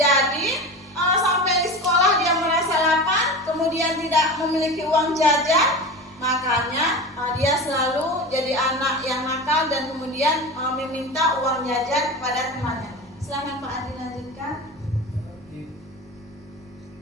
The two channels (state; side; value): normal; both; correlation 0.29